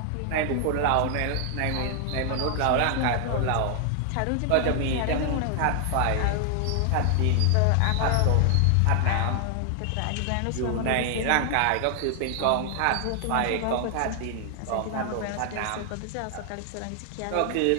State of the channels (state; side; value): different; both; correlation 0.00